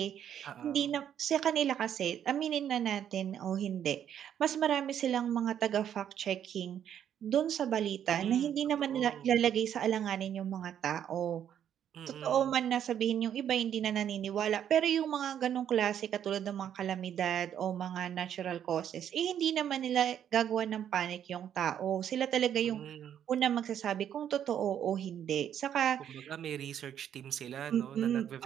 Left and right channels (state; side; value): quieter; left; 9.6 dB